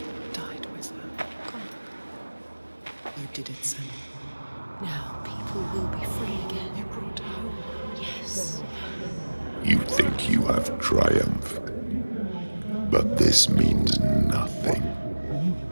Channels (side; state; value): both; inverted; correlation -1.00